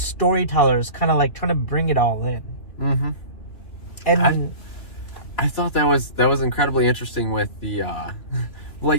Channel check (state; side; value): late; right; 3.1 ms